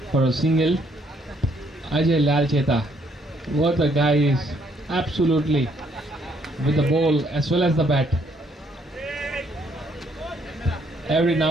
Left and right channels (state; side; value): normal; both; correlation 0.69